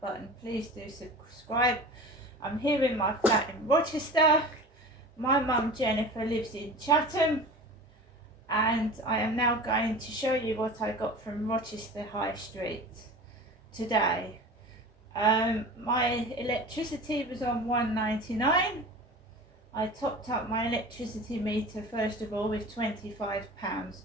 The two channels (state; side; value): normal; both; correlation 0.36